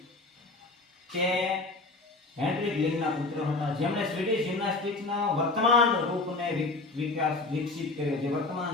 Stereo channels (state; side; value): quieter; right; 3.4 dB